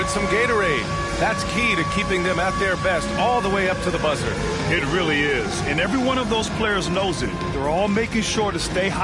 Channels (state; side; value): identical; both; correlation 1.00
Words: some Gatorade. That's key to keeping them at their best all the way up to the buzzer. It really is. And every one of those players knows it. They're all making sure to stay